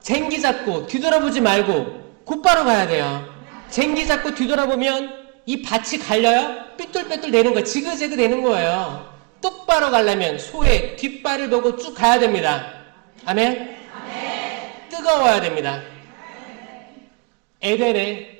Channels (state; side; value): quieter; left; 32.6 dB